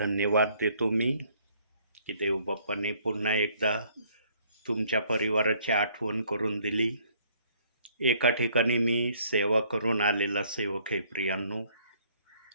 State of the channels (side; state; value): both; inverted; correlation -0.63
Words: देतो मी की देवबाप्पाने पुन्हा एकदा तुमच्या परिवाराची आठवण करून दिली. एका ठिकाणी मी सेवा करून आलेला सेवक आहे प्रियांनो,